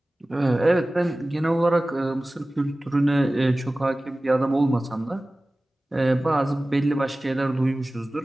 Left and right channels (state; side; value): normal; both; correlation 0.97